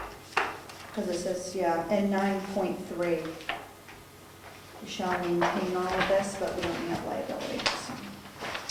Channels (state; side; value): identical; both; correlation 1.00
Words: Because it says, yeah, in 9.3, we shall maintain all of this, but we don't have liability, so.